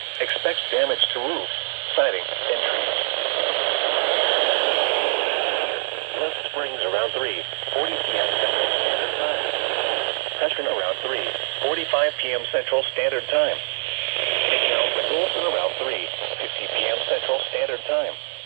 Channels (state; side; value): silent; left; digital silence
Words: expect damage to roofs, siding, and trees. Left Springs around 3:40 p.m. Central Standard Time. Session around 3:45 p.m. Central Standard Time. Taking out the Golson around 3:50 p.m. Central Standard Time.